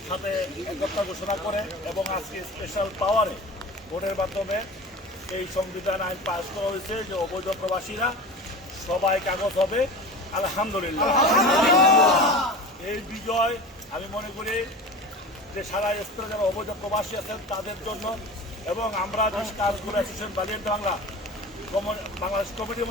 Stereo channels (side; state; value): both; normal; correlation 0.34